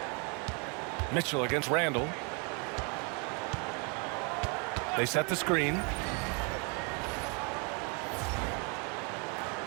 Mitchell against Randall. They set the screen.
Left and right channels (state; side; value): quieter; left; 33.9 dB